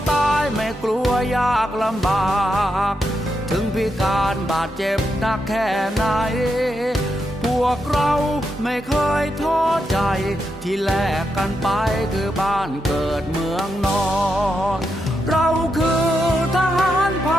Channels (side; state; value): both; normal; correlation 0.84